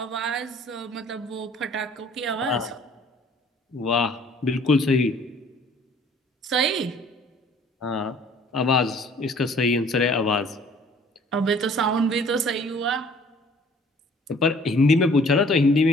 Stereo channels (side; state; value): both; normal; correlation 0.55